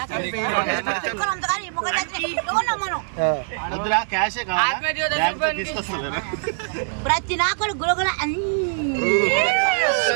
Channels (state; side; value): silent; left; digital silence